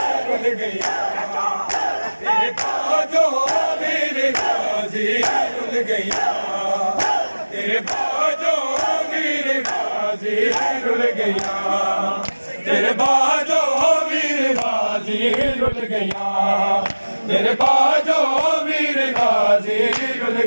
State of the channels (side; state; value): both; inverted; correlation -1.00